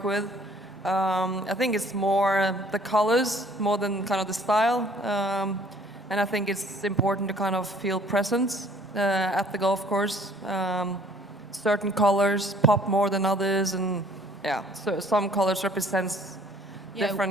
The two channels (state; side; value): normal; both; correlation 0.57